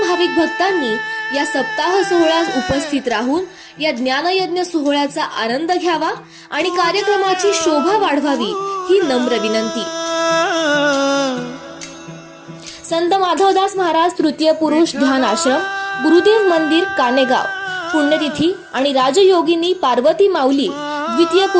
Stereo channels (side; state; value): both; identical; correlation 1.00